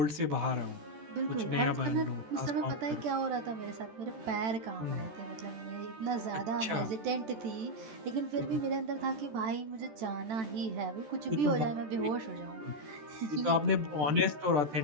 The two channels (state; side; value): late; left; 13 ms